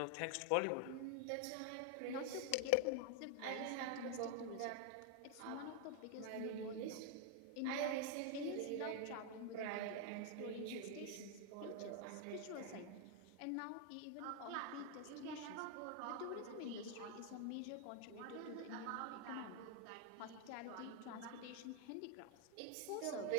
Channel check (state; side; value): different; both; correlation 0.00